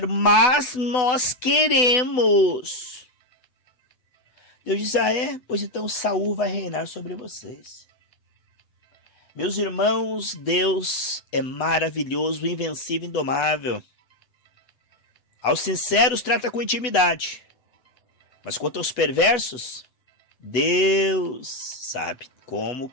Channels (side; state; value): right; late; 8.0 ms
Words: mas nós queremos. Deus disse: ah, é? Pois então Saul vai reinar sobre vocês. Meus irmãos, Deus é maravilhoso, invencível, indomável. Aos sinceros trata com intimidade. Mas quanto aos perversos, Deus sabe como